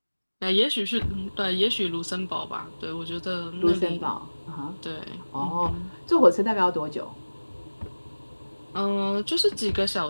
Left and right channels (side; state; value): both; inverted; correlation -1.00